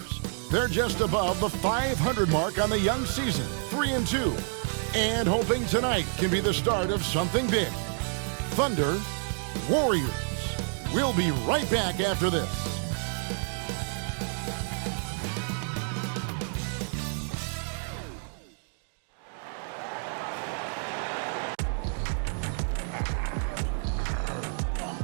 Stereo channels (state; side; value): silent; left; 59 dB below the other